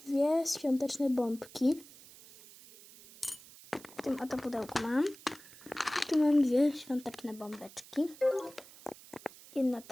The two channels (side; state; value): right; noise; hiss, 20 dB below the sound